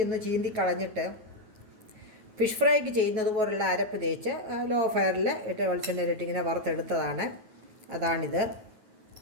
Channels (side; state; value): left; late; 9.3 ms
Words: ഒന്ന് ചീന്തി കളഞ്ഞിട്ട് ഫിഷ് ഫ്രൈക്ക് ചെയ്യുന്നത് പോലുള്ള അരപ്പ് തേച്ച് ലോ ഫയറിൽ ഇട്ട് വെളിച്ചെണ്ണയിലിട്ട് ഇങ്ങനെ വറുത്തെടുത്തതാണ്. അതാണിത്.